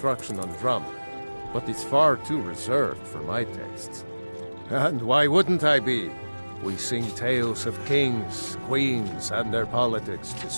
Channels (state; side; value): inverted; both; correlation -1.00